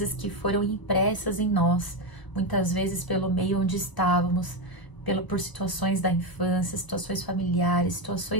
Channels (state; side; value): late; right; 1.0 ms